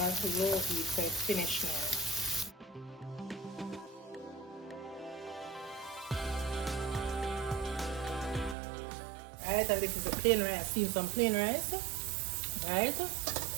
a low heat, so it's finished now. Alright, and this is the plain rice. I've seen some plain rice. Alright.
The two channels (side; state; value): left; drops out; at 8.6 s